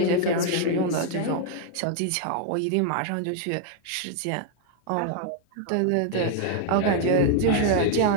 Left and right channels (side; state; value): both; different; correlation 0.00